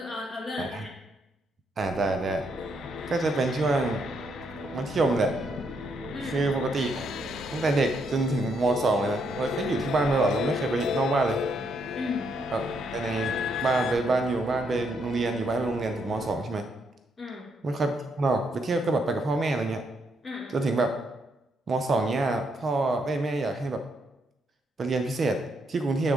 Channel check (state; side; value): normal; both; correlation 0.76